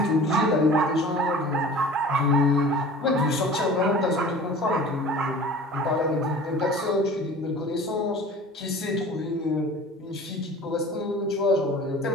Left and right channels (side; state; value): both; normal; correlation 0.42